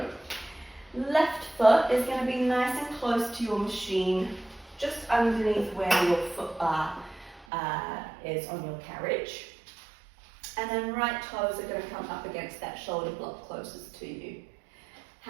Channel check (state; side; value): drops out; left; at 7.5 s